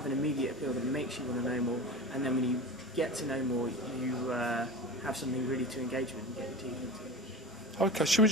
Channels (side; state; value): both; normal; correlation 0.30